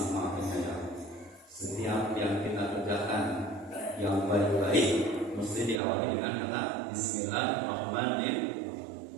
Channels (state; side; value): drops out; left; at 5.8 s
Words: Maha Penyayang. Setiap yang kita kerjakan yang baik-baik mesti diawali dengan kata Bismillahirrahmanirrahim.